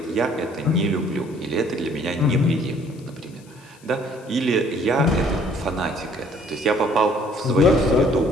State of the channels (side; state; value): left; noise; hiss, 27 dB below the sound